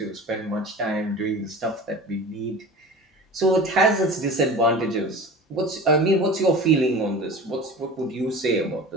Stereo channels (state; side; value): normal; both; correlation 0.37